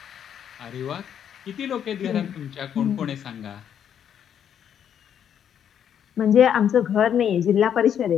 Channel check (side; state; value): right; quieter; 9.0 dB